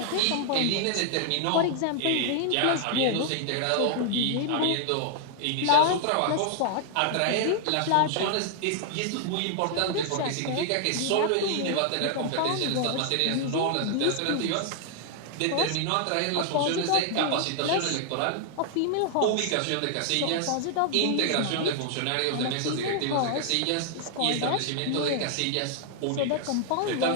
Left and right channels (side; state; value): both; different; correlation 0.00